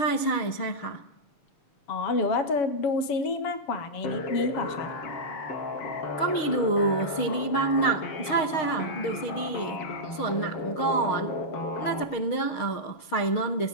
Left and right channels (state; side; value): late; right; 6.5 ms